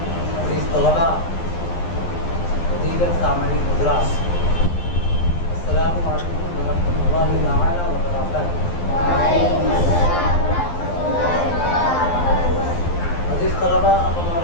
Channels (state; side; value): late; right; 11 ms